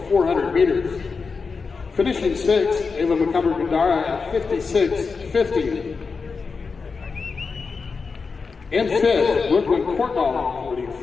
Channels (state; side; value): quieter; right; 4.9 dB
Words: 400 meters. Finishing sixth, Ava McCumber-Gandara at 56.50. In fifth, Brooklyn Courtnall winning